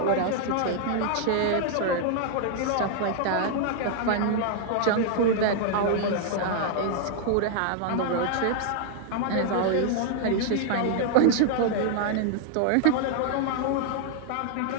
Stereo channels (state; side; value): different; both; correlation 0.00